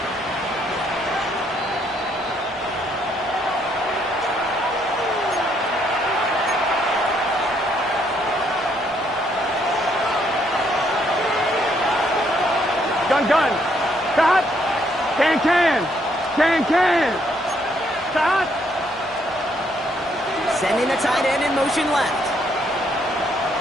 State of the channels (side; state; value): both; normal; correlation 0.71